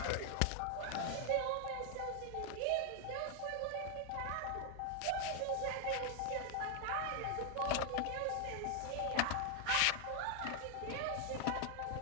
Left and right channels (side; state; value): both; different; correlation 0.01